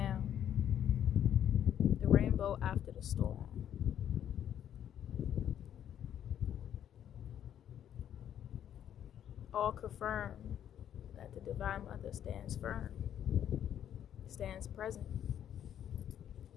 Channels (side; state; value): right; quieter; 10.0 dB